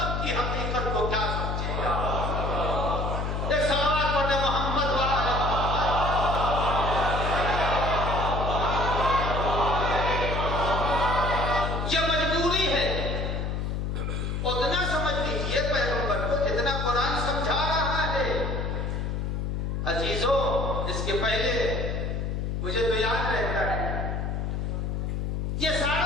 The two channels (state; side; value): noise; left; hum, 1 dB below the sound